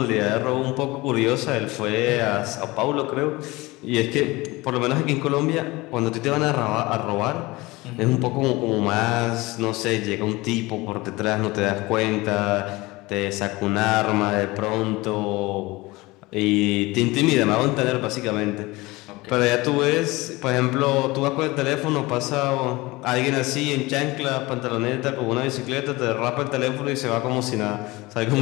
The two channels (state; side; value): quieter; right; 21.6 dB